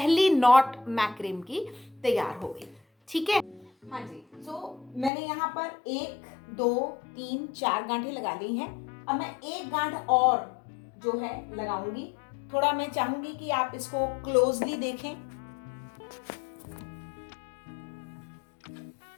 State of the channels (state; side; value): drops out; right; at 5.1 s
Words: नॉट मैक्रेम की तैयार हो गई। ठीक है, हाँ जी। मैंने यहाँ पर 1 2 3 4 गांठें लगा ली हैं। अब मैं एक गांठ और जो है लगाऊंगी। थोड़ा मैं चाहूंगी कि आप इसको क्लोजली देखें।